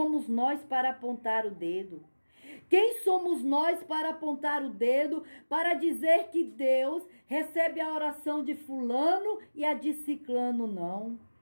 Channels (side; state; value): both; inverted; correlation -1.00